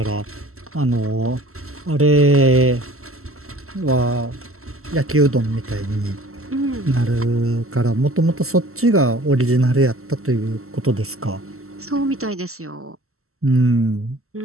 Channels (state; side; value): late; left; 0.63 ms